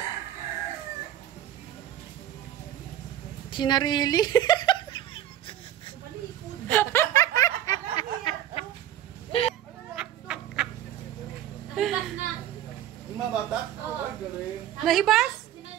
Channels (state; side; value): quieter; left; 11.8 dB